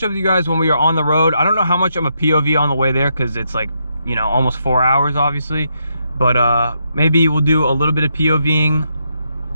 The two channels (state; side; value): inverted; both; correlation -0.79